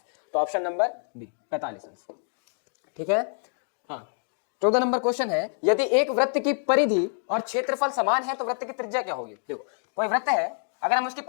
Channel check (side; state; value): right; silent; 60 dB below the other